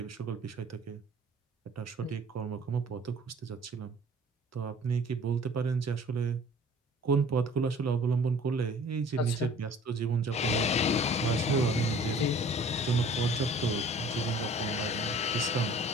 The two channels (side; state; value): both; normal; correlation 0.50